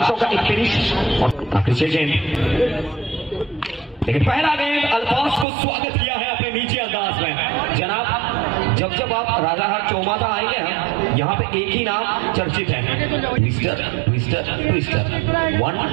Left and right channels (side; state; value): left; drops out; at 5.5 s